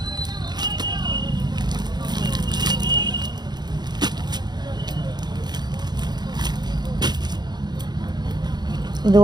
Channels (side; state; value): left; late; 0.20 ms